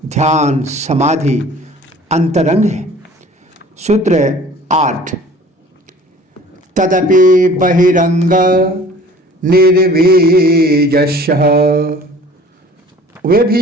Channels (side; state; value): both; normal; correlation 0.48